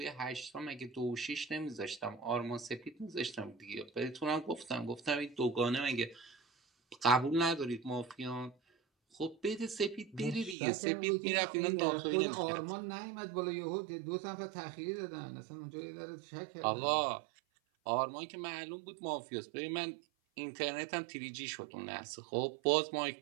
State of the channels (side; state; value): left; drops out; at 10.6 s